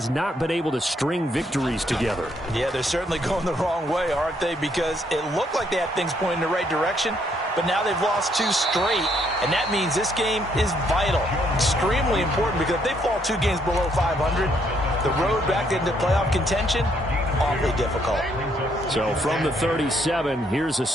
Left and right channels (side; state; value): both; normal; correlation 0.71